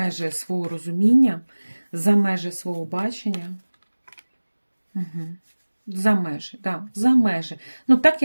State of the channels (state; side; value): inverted; both; correlation -1.00